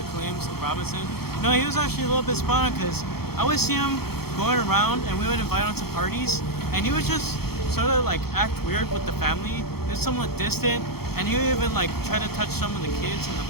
claims of Robinson. No, he was actually a little bit spot on because I would see him going around and we would invite him to parties and he would just sort of like act weird with the family. He was somewhat distant and he would even like try to touch some of the kids and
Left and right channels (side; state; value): right; late; 0.96 ms